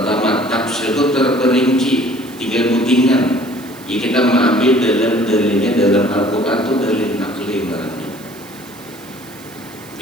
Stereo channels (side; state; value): right; noise; hiss, 21 dB below the sound